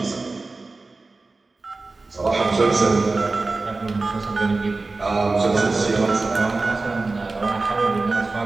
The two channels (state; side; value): quieter; left; 3.5 dB